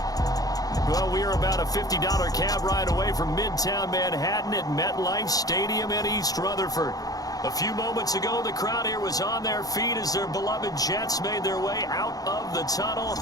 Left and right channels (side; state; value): right; late; 0.18 ms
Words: Well, we are about a $50 cab ride away from Midtown Manhattan at MetLife Stadium in East Rutherford. A few moments ago, the crowd here was on their feet as their beloved Jets made their way out of the tunnel.